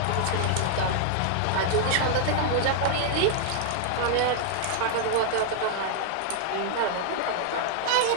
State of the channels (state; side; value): different; both; correlation 0.00